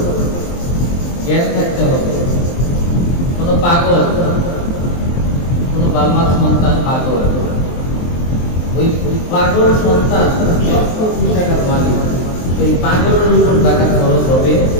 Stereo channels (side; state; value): right; late; 23 ms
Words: জ্ঞান থাকতে হবে। কোন পাগল, কোন বাবার সন্তান পাগল, ওই পাগল সন্তান 1,00,000 টাকার মালিক, সেই পাগলের উপর যাকাত ফরজ হবে